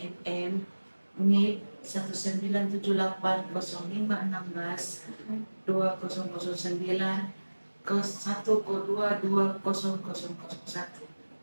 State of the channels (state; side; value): inverted; both; correlation -1.00